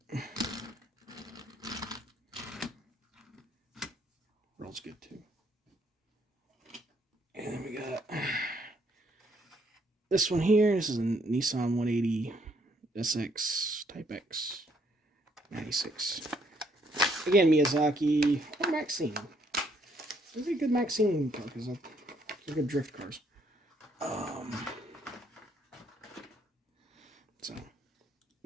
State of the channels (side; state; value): both; normal; correlation 0.69